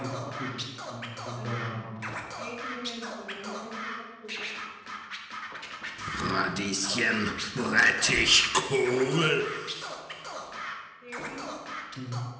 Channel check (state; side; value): identical; both; correlation 1.00